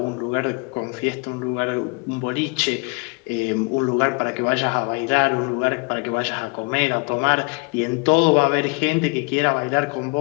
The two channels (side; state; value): right; quieter; 31.3 dB